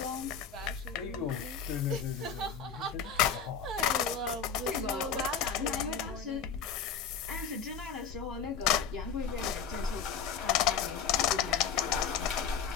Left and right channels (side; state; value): right; quieter; 6.9 dB